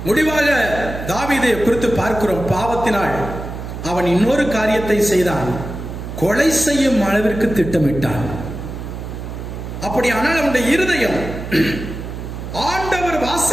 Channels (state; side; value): noise; right; hum, 8 dB below the sound